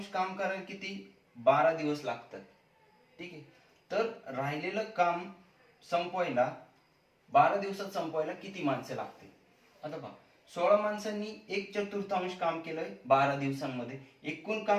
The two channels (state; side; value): identical; both; correlation 1.00